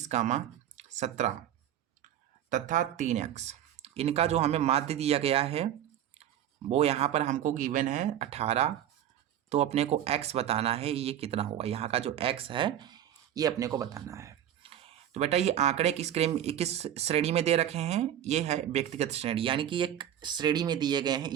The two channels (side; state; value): left; quieter; 10.8 dB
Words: 17 तथा 3x। इनका जो हमें माध्य दिया गया है वो यहाँ पर हमको गिवन है 18। तो अपने को x बताना है ये कितना होगा, यहाँ का जो x है ये अपने को बताना है। तो बेटा ये आंकड़े किस श्रेणी में दे रखे हैं, ये है व्यक्तिगत श्रेणी, यानी कि एक श्रेणी में दिए गए हैं